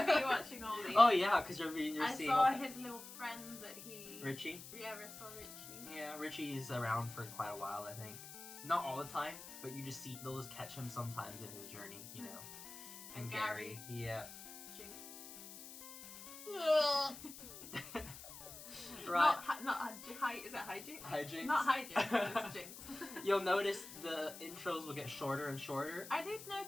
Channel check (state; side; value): noise; left; hiss, 13 dB below the sound